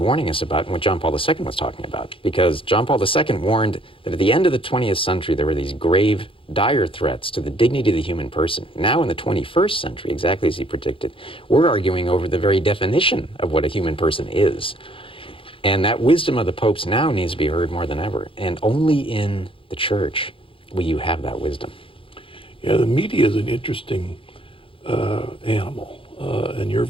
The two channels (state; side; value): late; right; 0.26 ms